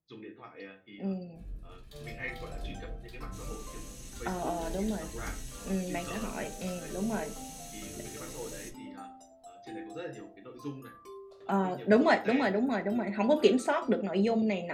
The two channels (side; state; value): both; identical; correlation 1.00